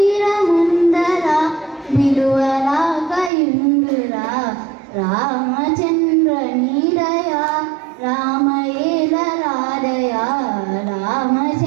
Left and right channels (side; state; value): left; drops out; at 3.3 s